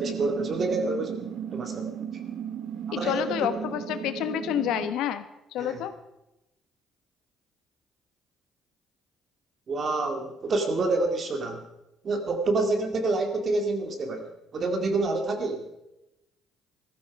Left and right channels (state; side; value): normal; both; correlation 0.63